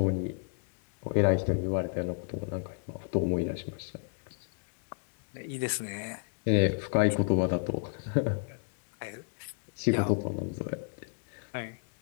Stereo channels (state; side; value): silent; right; digital silence